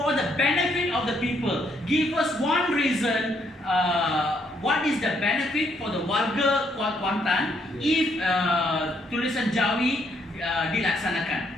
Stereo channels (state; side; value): normal; both; correlation 0.72